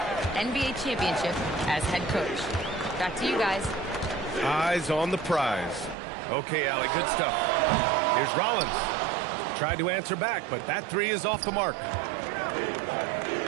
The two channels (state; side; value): drops out; left; at 6.0 s